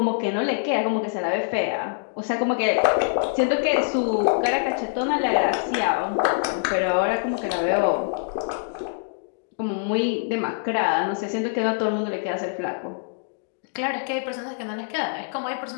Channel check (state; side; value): silent; right; digital silence